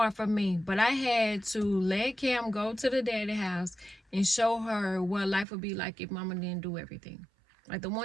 for me, but I had to let Cam go to the daddy house and show her what life would be like if mama didn't do everything. Like, the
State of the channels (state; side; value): drops out; left; at 5.5 s